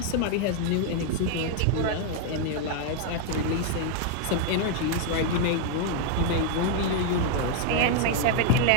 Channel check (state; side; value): different; both; correlation 0.00